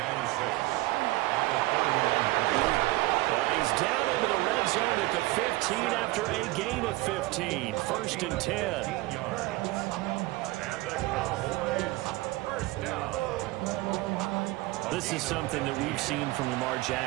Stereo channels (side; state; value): left; quieter; 19.9 dB